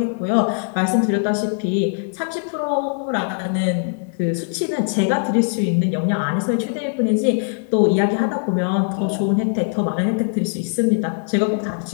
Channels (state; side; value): silent; right; digital silence